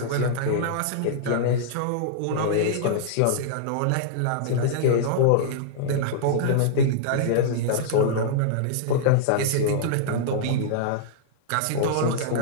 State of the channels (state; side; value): different; both; correlation -0.02